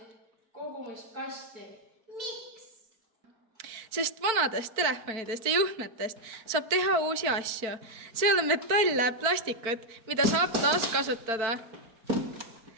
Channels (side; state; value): left; late; 4.5 ms